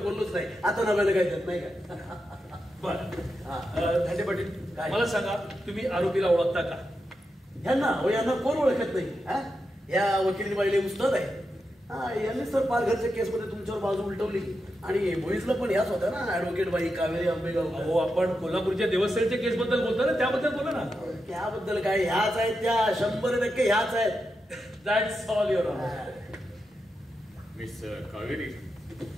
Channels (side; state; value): both; normal; correlation 0.87